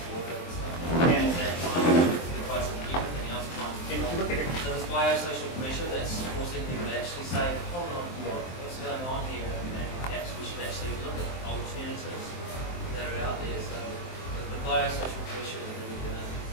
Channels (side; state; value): right; late; 23 ms